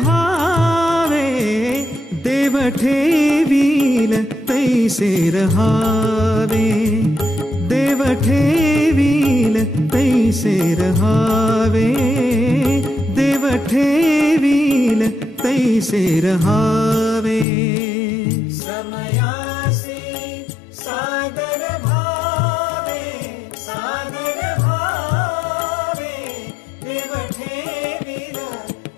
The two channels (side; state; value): right; drops out; at 17.4 s